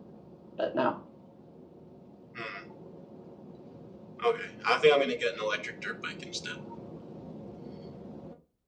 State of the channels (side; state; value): both; identical; correlation 1.00